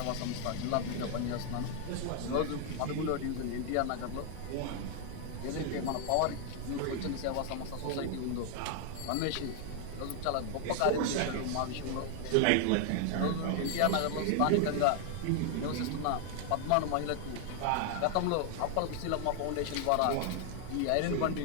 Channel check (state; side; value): different; both; correlation 0.00